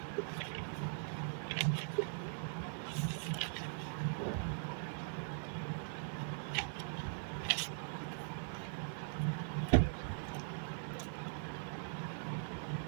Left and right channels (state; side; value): silent; left; digital silence